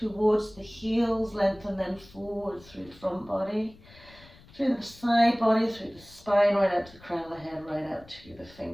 the heels, lengthen then forward through the front body, through the side body, through the spine, right out to the crown of the head, right out to the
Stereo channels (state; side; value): noise; left; rumble, 24 dB below the sound